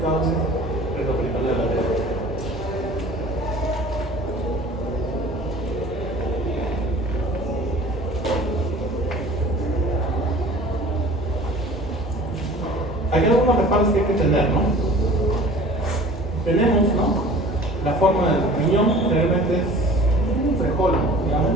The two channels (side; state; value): both; normal; correlation 0.45